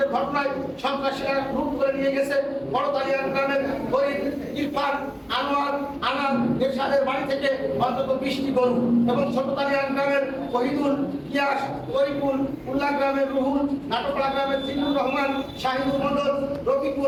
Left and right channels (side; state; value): both; identical; correlation 1.00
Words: ঘটনায় সন্ত্রাসীরা লুট করে নিয়ে গেছে বড়তালিয়ান গ্রামের গরিব ইরফান, আনোয়ার, আনাদ এরশাদের বাড়ি থেকে অন্তত 20টি গরু এবং ছোটতালিয়ান গ্রামের শহীদুল, ইয়াস, তরিকুল, উল্লাহ গ্রামের রুহুল, নাটকলা গ্রামের জিল্লুর রহমান, শাহিদুল মন্ডল,